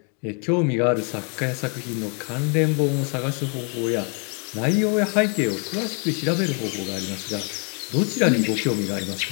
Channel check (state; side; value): quieter; right; 39.0 dB